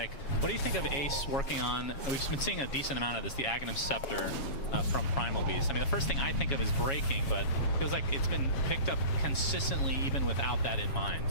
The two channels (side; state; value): right; late; 6.8 ms